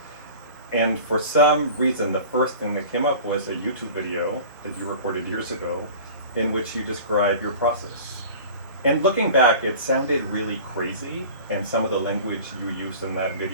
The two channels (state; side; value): inverted; both; correlation -0.40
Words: And for some reason, the first thing that came up was a YouTube video that you recorded years ago in which you describe your process. And looking back, it sounded really crazy, and some of the language you used in that